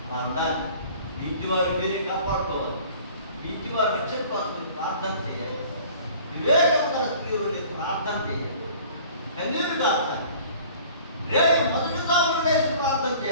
అలా ఉండాలి. మీ ఇంటి వారు మీరే కాపాడుకోవాలి. మీ ఇంటి వారు రక్షణ కోసం ప్రార్థన చేయాలి. వివేకం గల స్త్రీలు ప్రార్థన చేయాలి. కన్నీరు కావాలి. రేపు మొదటిగా వేసి ప్రార్థన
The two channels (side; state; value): both; inverted; correlation -0.49